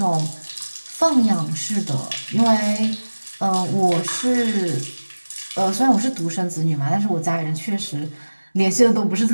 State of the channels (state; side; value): inverted; both; correlation -1.00